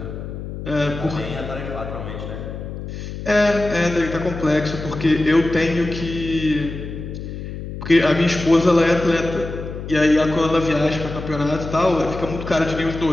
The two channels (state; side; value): noise; left; hum, 8 dB below the sound